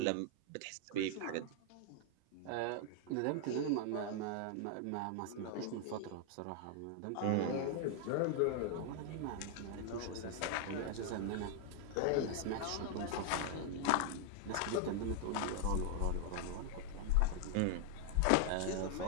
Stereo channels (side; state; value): both; different; correlation 0.00